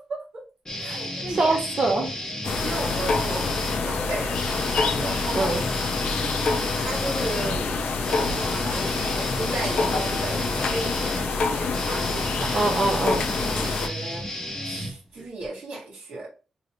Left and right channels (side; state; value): both; normal; correlation 0.77